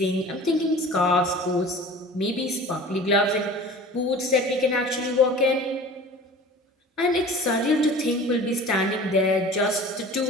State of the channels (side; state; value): both; normal; correlation 0.41